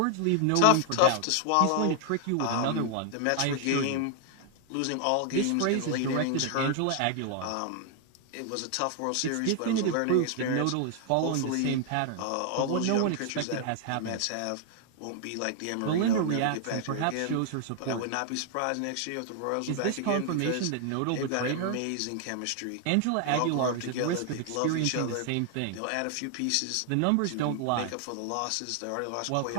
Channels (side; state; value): both; different; correlation 0.00